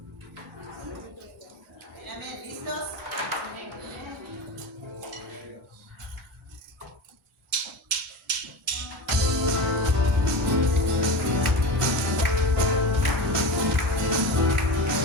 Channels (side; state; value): both; normal; correlation 0.27